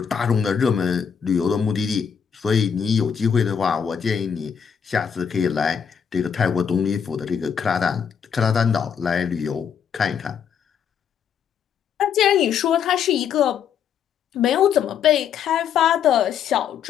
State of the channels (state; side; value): quieter; right; 7.6 dB